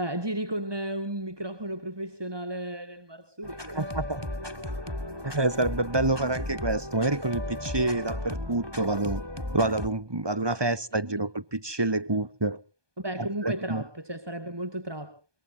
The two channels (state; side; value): late; left; 1.2 ms